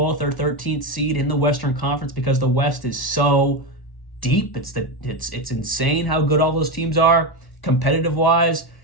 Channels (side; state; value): right; late; 1.1 ms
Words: or 13th seed in the Western Conference because the West is so deep. It's insane how good all those teams are competitive-wise.